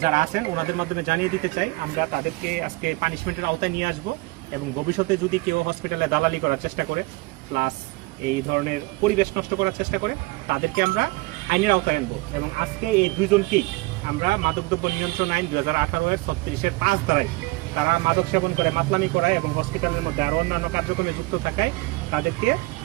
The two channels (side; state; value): left; quieter; 22.9 dB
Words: যারা আছেন ওনাদের মাধ্যমে জানিয়ে দিতে চাই, আমরা তাদেরকে আজকে পানিশমেন্টের আওতায় নিয়ে আসবো এবং ভবিষ্যতে যদি কেউ হসপিটালে দালালি করার চেষ্টা করে প্লাস এই ধরনের পরিবেশ নষ্ট করার চেষ্টা করে, তাদেরকে আমরা আইনের আওতায় আনবো। এবং আজকে এই 2 জনকেই আমরা মাদকদ্রব্য নিয়ন্ত্রণ আইন 2018-এর 36-এর 5 ধারায় তারা মাদক সেবন করে মাতলামি করায় এবং হসপিটালের মধ্যে আরও অন্যান্য কার্যক্রমে যুক্ত থাকায় তাদেরকে